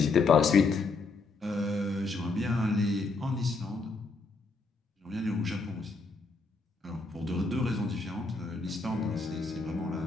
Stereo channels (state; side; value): quieter; right; 3.9 dB